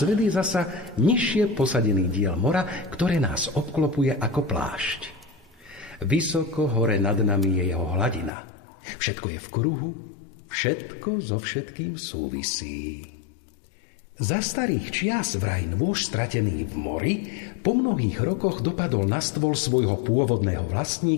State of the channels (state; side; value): drops out; right; at 8.3 s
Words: svet je zasa nižšie posadený diel mora, ktoré nás obklopuje ako plášť. Vysoko hore nad nami je jeho hladina. Všetko je v kruhu, všetko so všetkým súvisí. Za starých čias vraj nôž stratený v mori po mnohých rokoch dopadol na stôl svojho pôvodného